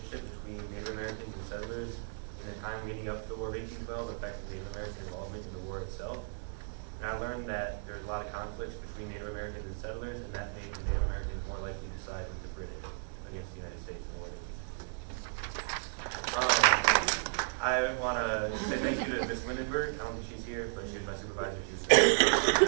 between Native Americans and settlers in the time leading up to the War of 1812 affected Native American involvement in the war itself. And I learned that there's a lot of conflicts between Native Americans and settlers, and that made the Native Americans more likely to side with the British against the United States in the War of 1812. I want to say thank you to Ms. Lindenberg. I don't think she's here, but she was my supervisor. She was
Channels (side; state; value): left; silent; digital silence